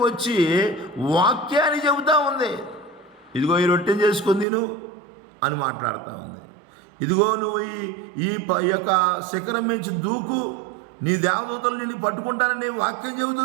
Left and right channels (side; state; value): left; drops out; at 4.5 s